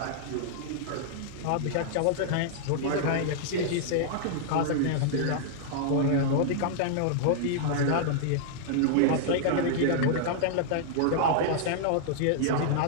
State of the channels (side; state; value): both; different; correlation -0.01